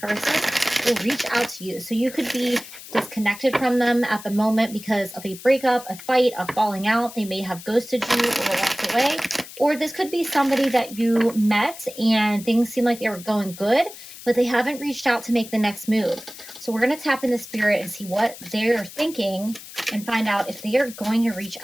will reach out to you. So you could be disconnected from them at the moment because of a breakup, a fight, a falling out. They may have ghosted you or walked away. Or this could be somebody that you met and things seem like they were going good, but they haven't reached out to make the next move. So we're going to tap into spirit and see what they're thinking and find out if they are going to reach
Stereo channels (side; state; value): left; noise; hiss, 15 dB below the sound